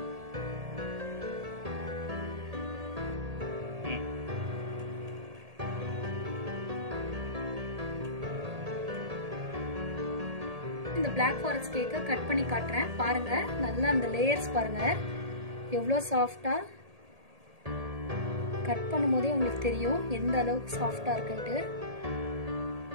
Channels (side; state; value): left; late; 1.8 ms